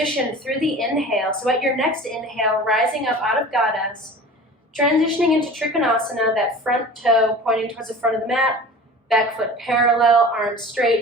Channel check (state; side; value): normal; both; correlation 0.39